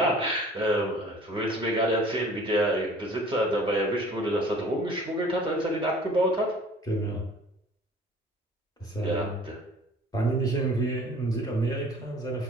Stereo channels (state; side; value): normal; both; correlation 0.49